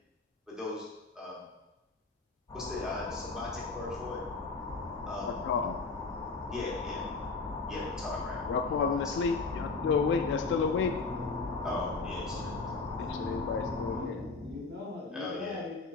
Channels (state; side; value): quieter; right; 4.0 dB